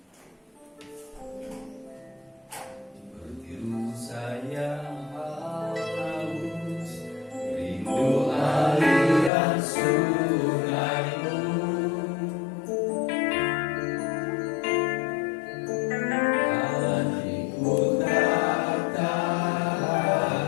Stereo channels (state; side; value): drops out; right; at 9.3 s